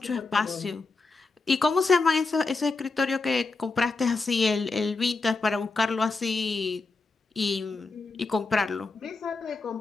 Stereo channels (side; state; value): right; quieter; 3.8 dB